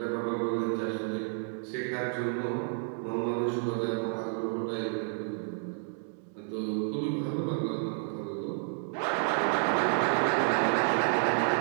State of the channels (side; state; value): left; silent; 57 dB below the other